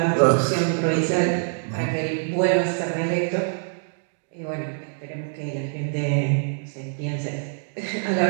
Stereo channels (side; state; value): left; silent; 62 dB below the other